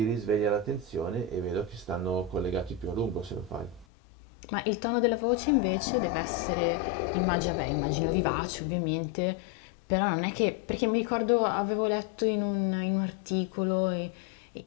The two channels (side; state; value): right; drops out; at 3.9 s